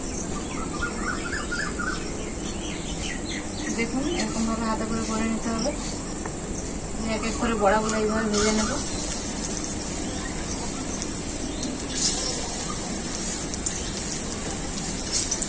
দেখুন এরকম ভাবে হাতে করে নিতে হবে। এক এক করে বড়াগুলো এইভাবে ভেজে নেব।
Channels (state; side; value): identical; both; correlation 1.00